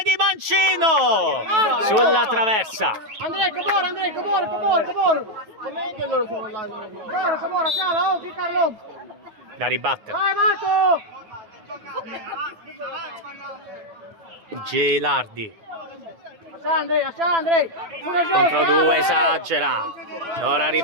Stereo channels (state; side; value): late; left; 9.2 ms